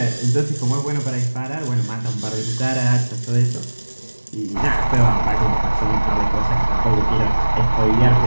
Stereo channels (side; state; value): both; inverted; correlation -1.00